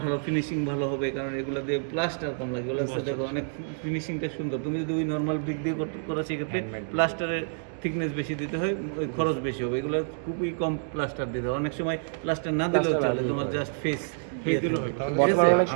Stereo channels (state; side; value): silent; left; digital silence